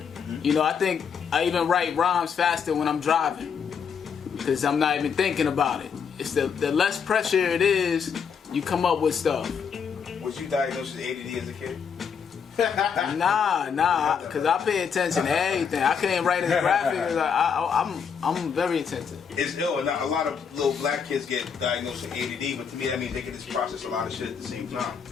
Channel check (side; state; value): right; quieter; 6.7 dB